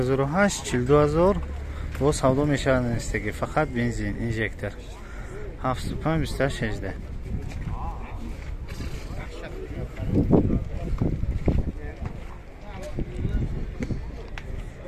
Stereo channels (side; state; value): both; identical; correlation 1.00